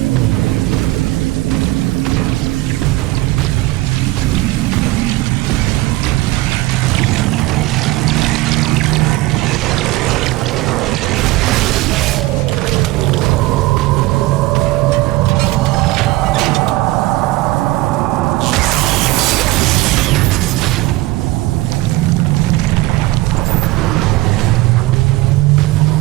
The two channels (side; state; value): left; quieter; 19.2 dB